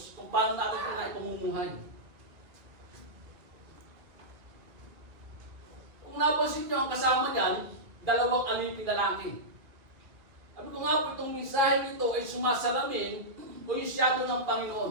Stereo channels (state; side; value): late; left; 2.0 ms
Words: Kung paano natin ito na ipamumuhay. Kung napansin nyo ang kasama niyan, 2 aliping lalaki. Sabi ko nga po itong mensahe nito ay sumasalamin o yung shadow ng